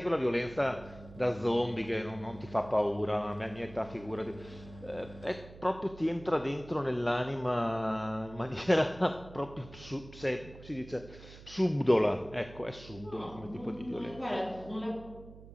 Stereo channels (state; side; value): noise; right; hum, 17 dB below the sound